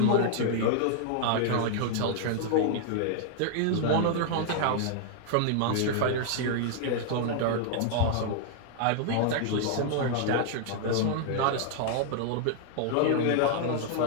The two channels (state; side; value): different; both; correlation -0.01